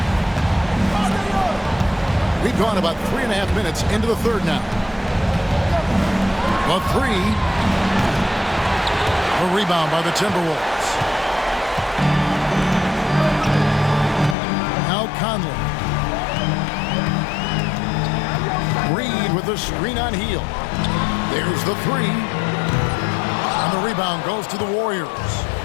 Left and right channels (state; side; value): drops out; right; at 14.4 s